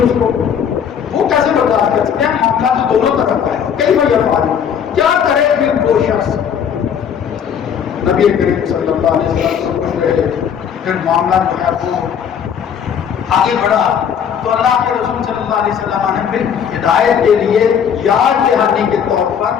اس کو. وہ کیسے برداشت کر سکتے ہیں؟ معاملہ تو دونوں طرف کا ہے. کئی بار یہ کیا کرے پھر وہ شخص نبی کریم صلی اللہ علیہ وسلم سے پوچھ رہے پھر معاملہ جو ہے وہ آگے بڑھا تو اللہ کے رسول صلی اللہ علیہ وسلم نے پھر ہدایت کے لیے یاد دہانی کے طور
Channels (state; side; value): quieter; right; 7.9 dB